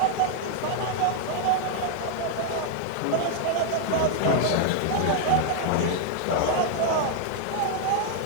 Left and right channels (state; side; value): different; both; correlation 0.00